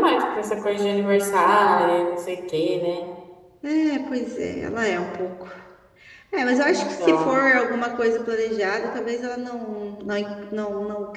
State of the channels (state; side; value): identical; both; correlation 1.00